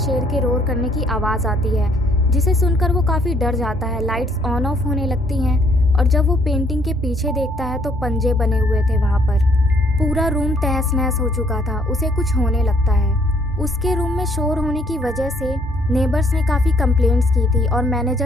के रोर करने की आवाज़ आती है, जिसे सुनकर वो काफ़ी डर जाता है। लाइट्स ऑन ऑफ होने लगती हैं और जब वो पेंटिंग के पीछे देखता है तो पंजे बने हुए थे वहाँ पर। पूरा रूम तहस नहस हो चुका था। उसे कुछ होने लगता है। उसके रूम में शोर होने की वजह से नेबर्स ने काफ़ी कंप्लेंट्स की थी और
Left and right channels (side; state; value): both; normal; correlation 0.65